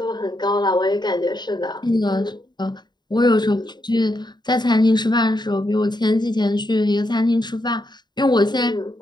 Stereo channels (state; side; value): late; right; 0.21 ms